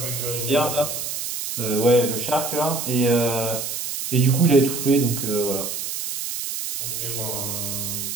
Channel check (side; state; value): right; noise; hiss, 5 dB below the sound